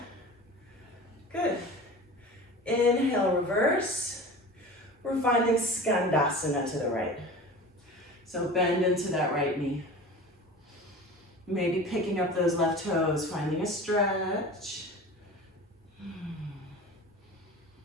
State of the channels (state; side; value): normal; both; correlation 0.36